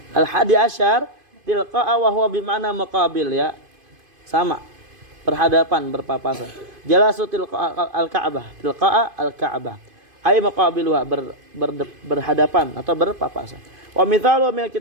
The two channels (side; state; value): left; late; 2.5 ms